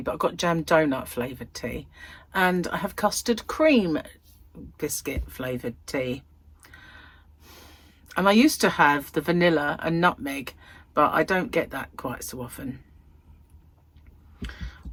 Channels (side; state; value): both; identical; correlation 1.00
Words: but I've got jam donut flavoured tea. And I have custard cream biscuit flavoured tea. And I used to have the vanilla and nutmeg, but I don't get that quite so often.